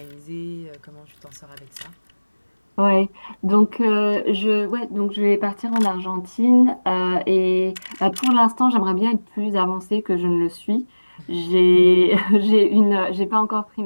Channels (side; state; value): both; inverted; correlation -1.00